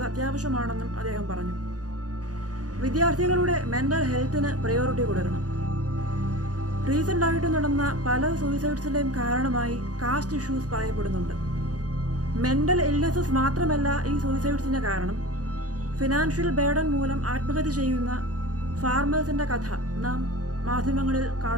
അത്യാവശ്യമാണെന്നും അദ്ദേഹം പറഞ്ഞു. വിദ്യാർത്ഥികളുടെ മെൻ്റൽ ഹെൽത്തിന് പ്രയോറിറ്റി കൊടുക്കണം. റീസെൻ്റായിട്ട് നടന്ന പല സൂയിസൈഡ്സിൻ്റെയും കാരണമായി കാസ്റ്റ് ഇഷ്യൂസ് പറയപ്പെടുന്നുണ്ട്. മെൻ്റൽ ഇൽനെസ്സസ് മാത്രമല്ല ഈ സൂയിസൈഡ്സിൻ്റെ കാരണം. ഫിനാൻഷ്യൽ ബേർഡൻ മൂലം ആത്മഹത്യ ചെയ്യുന്ന ഫാർമേഴ്സിൻ്റെ കഥ നാം മാധ്യമങ്ങളിൽ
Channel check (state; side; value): late; left; 0.67 ms